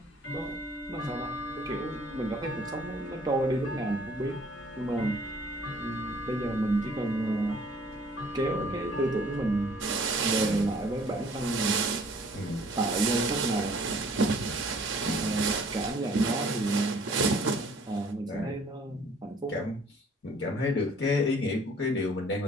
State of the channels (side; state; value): both; normal; correlation 0.56